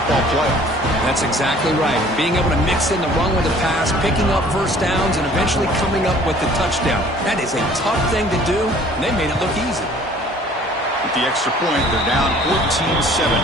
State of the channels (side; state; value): both; normal; correlation 0.53